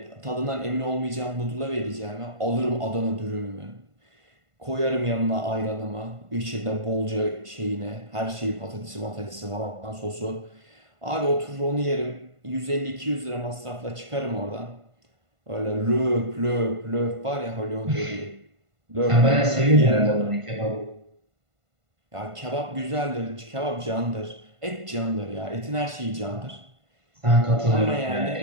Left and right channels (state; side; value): late; left; 1.5 ms